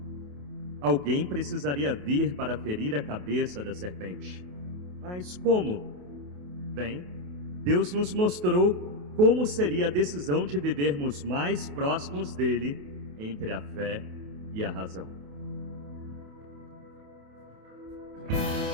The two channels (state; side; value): late; left; 28 ms